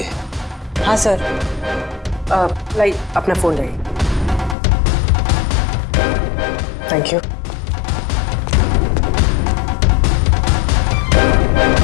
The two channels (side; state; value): right; drops out; at 4.5 s